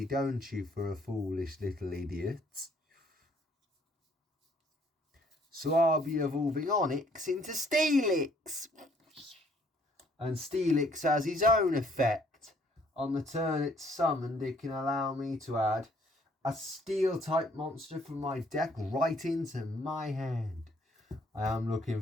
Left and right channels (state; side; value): normal; both; correlation 0.63